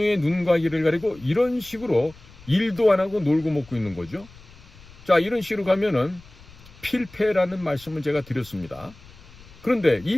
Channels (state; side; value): noise; left; rumble, 22 dB below the sound